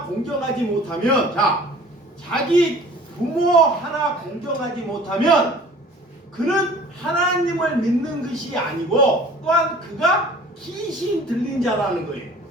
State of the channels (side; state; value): both; normal; correlation 0.47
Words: 공경하지 못하면, 자, 자기 부모 하나 공경하지 못하면 그는 하나님을 믿는 것이 아니고 또한 그가 귀신 들린 자라는 거예요.